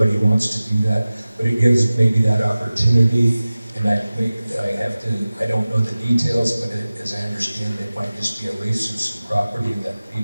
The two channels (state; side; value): inverted; both; correlation -0.97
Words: wants to do that, but it gives maybe that opportunity. And I don't know the details, but as I understand, it might just be a lease of some property that